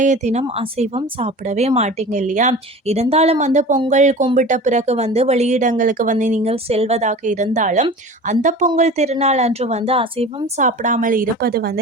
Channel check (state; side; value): normal; both; correlation 0.37